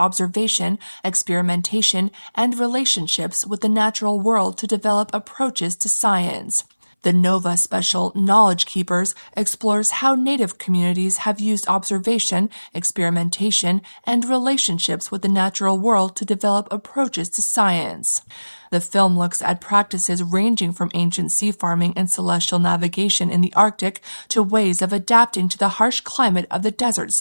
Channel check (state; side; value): inverted; both; correlation -1.00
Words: experimentation, and relationships with the natural world to develop approaches to science. The NOVA special, Knowledge Keepers, explores how Native communities have used observation, experimentation, and relationships with the natural world to develop approaches to science. The film looks at practices ranging from ancient sea farming and celestial navigation in the Arctic to ways of adapting to the harsh climate of the desert